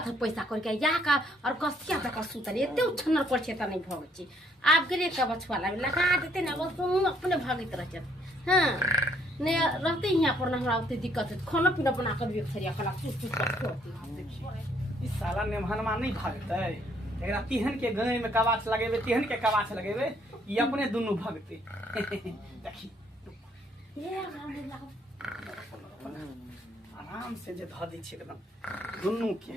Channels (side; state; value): both; normal; correlation 0.67